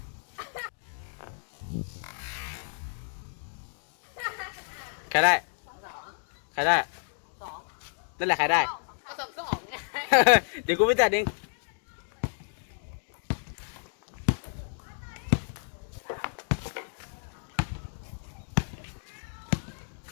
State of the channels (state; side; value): silent; right; digital silence